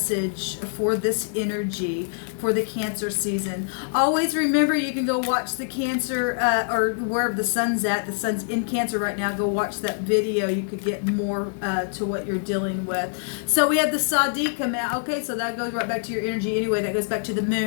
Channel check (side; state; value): right; silent; 62 dB below the other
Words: for this energy for the Cancer season? Always remember, you can go watch the Cancer or wherever the sun's at. The sun's in Cancer right now. Go watch that video. You could get more to what you're dealing with. So we had the ShAhH come out. Okay, so that goes right back to your energy anyway. That goes back to the